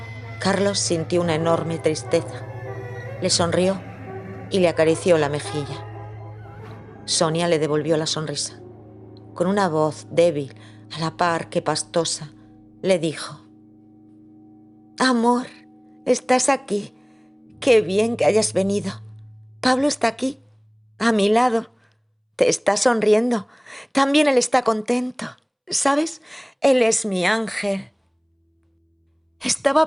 Carlos sintió una enorme tristeza. Le sonrió y le acarició la mejilla. Sonia le devolvió la sonrisa. Con una voz débil, a la par que pastosa, le dijo: «Amor, estás aquí. Qué bien que hayas venido. Pablo está aquí, a mi lado. Te está sonriendo. También él está contento. ¿Sabes? Él es mi ángel».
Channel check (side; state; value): both; identical; correlation 1.00